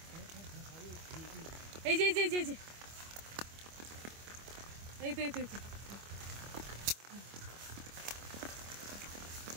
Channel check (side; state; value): left; late; 25 ms